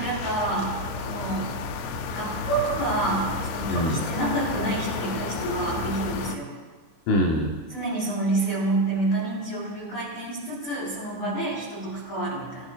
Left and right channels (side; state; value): right; late; 25 ms